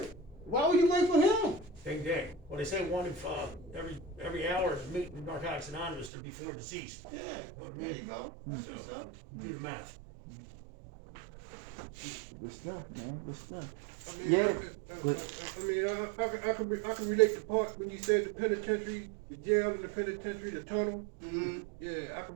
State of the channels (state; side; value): drops out; left; at 6.1 s